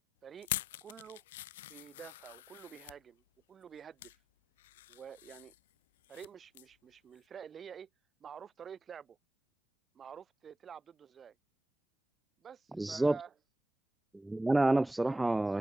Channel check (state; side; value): normal; both; correlation 0.90